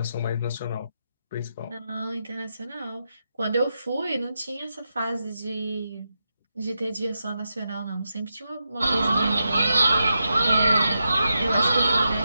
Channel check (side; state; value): both; inverted; correlation -0.86